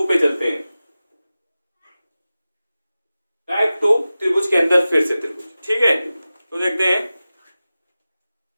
पे चलते हैं। टाइप 2 त्रिभुज के अंदर फिर से त्रिभुज। ठीक है, तो देखते हैं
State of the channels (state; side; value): inverted; both; correlation -0.96